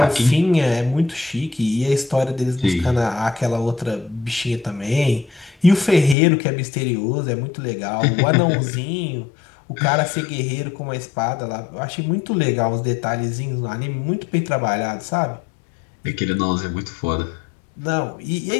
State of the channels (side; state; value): right; drops out; at 6.2 s